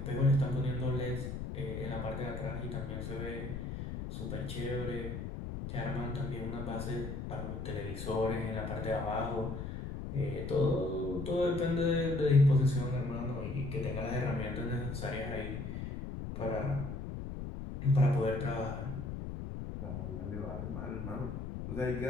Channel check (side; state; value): left; noise; rumble, 6 dB below the sound